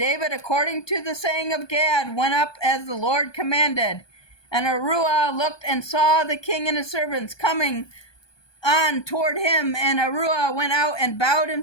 according to the saying of Gad, went up as the Lord commanded. And Aruah looked and saw the king and his servants coming on toward him. And Aruah went out and bowed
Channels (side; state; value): right; late; 1.2 ms